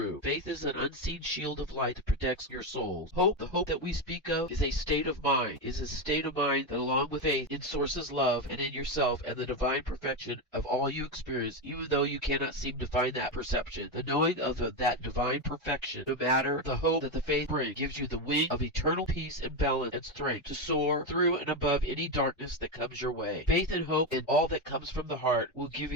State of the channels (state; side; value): normal; both; correlation 0.11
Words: Faith is an unseen shield of light that protects your souls. Hope, the hope that we speak of, is a state of mind. Is a state of mind that, along with faith in Source's love and in yourself and the divine perfection of all you experience, even though you cannot seem to find that perception, the knowing of that divine perfection, no matter the hope that the faith brings, gives you the wing of eternal peace and balance and strength to soar through and above any darkness that comes your way. Faith and hope in all that comes from the heart will give